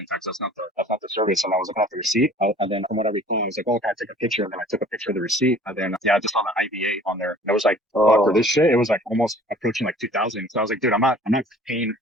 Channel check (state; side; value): normal; both; correlation 0.50